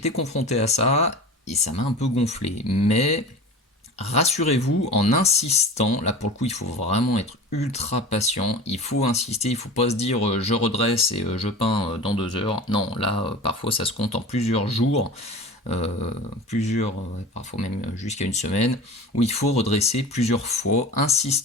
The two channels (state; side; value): normal; both; correlation 0.34